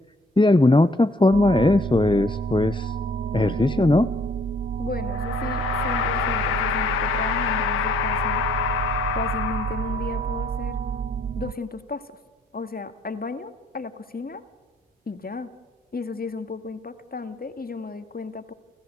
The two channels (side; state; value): both; normal; correlation 0.64